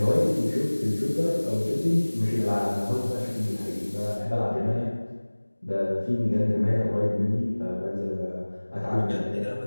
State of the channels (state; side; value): inverted; both; correlation -1.00